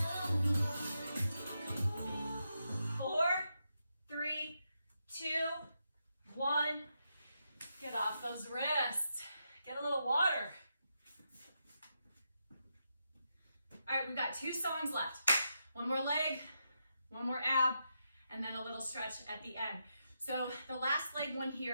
4, 3, 2, 1. Get off those wrists. Get a little water. All right, we've got 2 songs left. One more leg, one more ab, and then a little stretch at the end. So the last leg one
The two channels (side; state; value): both; inverted; correlation -0.84